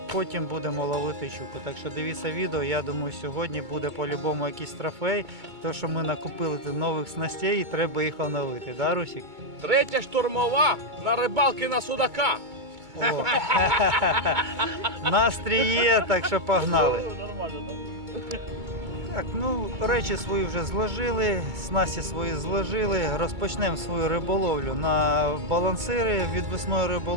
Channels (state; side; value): late; left; 2.3 ms